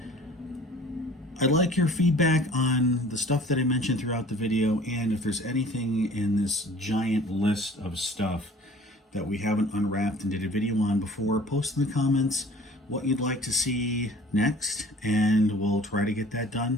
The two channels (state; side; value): normal; both; correlation 0.49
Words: I'd like your feedback on the stuff that I mentioned throughout the video, and if there's anything in this giant list of stuff that we haven't unwrapped and did a video on before, post in the comments what you'd like to see next, and we'll try to get that